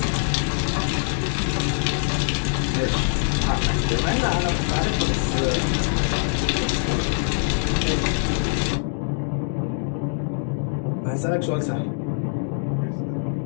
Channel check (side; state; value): right; silent; digital silence